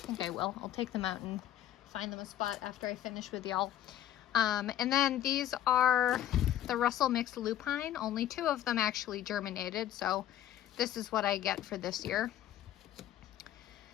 I will. I'll take them out and find them a spot after I finish with y'all. And then these are the Russell Mixed Lupine. Only 2 of them actually germinated, so this is what I get for this year.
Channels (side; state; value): right; quieter; 12.0 dB